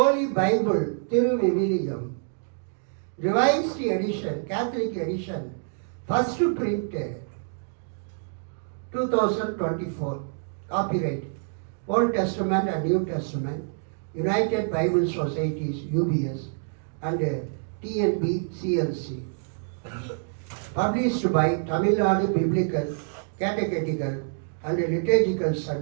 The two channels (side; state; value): left; silent; digital silence